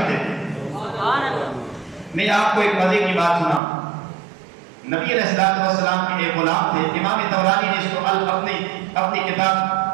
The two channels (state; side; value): drops out; left; at 3.6 s